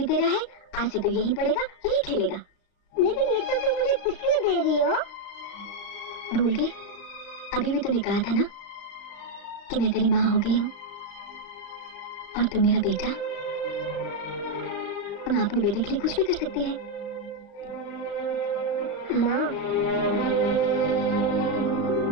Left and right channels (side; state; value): right; late; 35 ms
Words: तेरा है। आज से तो यही पड़ेगा, यही खेलेगा। लेकिन ये सब तुम मुझे किस लिए दे रही हो? भूल गई? अभी भी तूने कहा था ना कि मैं तेरी माँ हो गई हूँ और तू मेरा बेटा। माँ अपने बेटे के लिए कुछ भी कर सकती है। माँ,